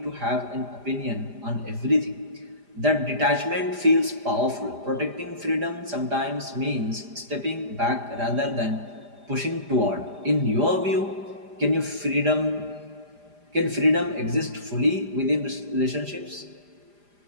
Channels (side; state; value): left; late; 5.0 ms